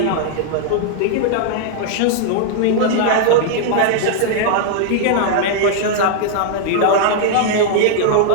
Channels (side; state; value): both; different; correlation 0.00